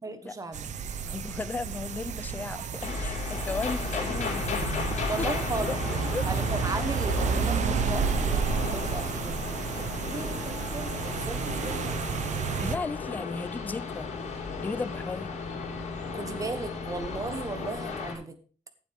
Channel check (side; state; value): both; normal; correlation 0.51